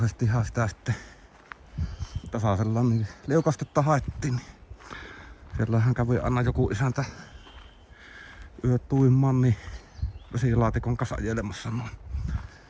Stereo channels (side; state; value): both; identical; correlation 1.00